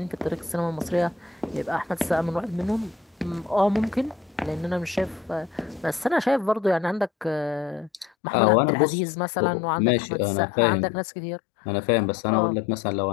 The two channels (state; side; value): drops out; right; at 8.1 s